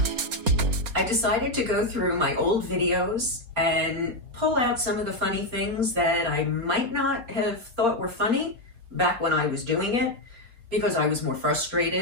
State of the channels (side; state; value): left; late; 4.3 ms